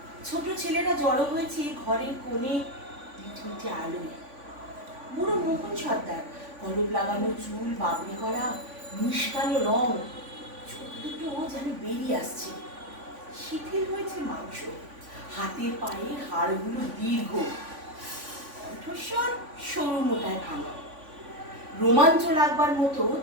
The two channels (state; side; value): late; left; 3.5 ms